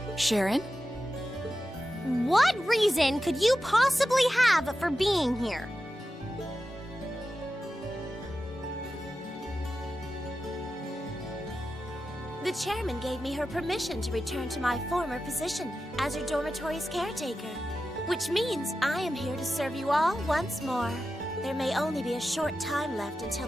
Sharon? What reason could you possibly have for being here? The chairman gave me her permission to return to my former position as her dormitory's caretaker, which means I am here to serve you all once more. There may only be a short time left until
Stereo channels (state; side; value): normal; both; correlation 0.92